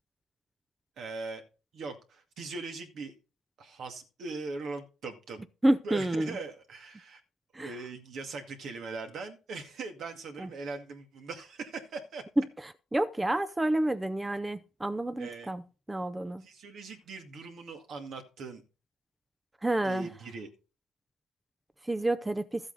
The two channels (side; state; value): both; normal; correlation 0.95